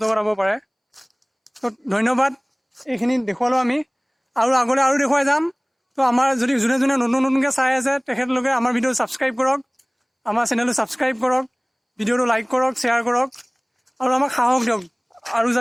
কৰাব পাৰে। তো ধন্যবাদ, এইখিনি দেখুৱালোঁ আমি, আৰু আগলৈ আৰু দেখুৱাই যাম। তো আমাৰ যদি যোনে যোনে নতুনকৈ চাই আছে তেখেতলোকে আমাৰ ভিডিঅ' ছাবস্ক্ৰাইব কৰক, আমাৰ চেনেলটো ছাবস্ক্ৰাইব কৰক, ভিডিঅ'টো লাইক কৰক, শ্বেয়াৰ কৰক, আৰু আমাক সাহস দিয়ক আৰু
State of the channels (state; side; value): identical; both; correlation 1.00